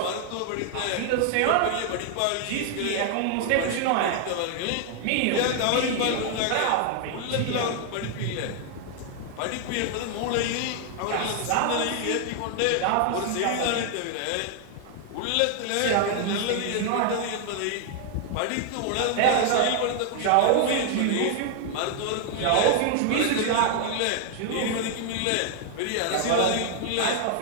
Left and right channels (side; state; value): both; different; correlation 0.00